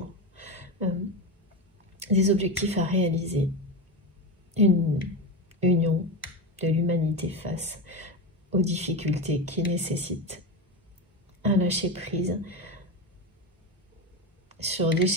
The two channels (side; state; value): both; normal; correlation 0.19